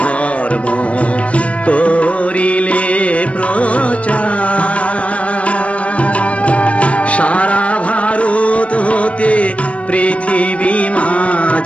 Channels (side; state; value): right; late; 0.063 ms